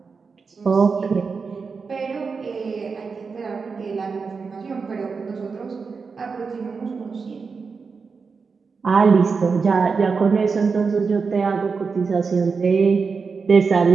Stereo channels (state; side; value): quieter; left; 5.0 dB